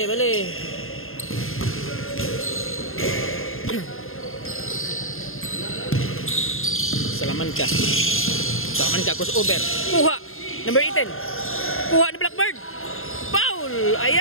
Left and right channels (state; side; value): late; right; 0.61 ms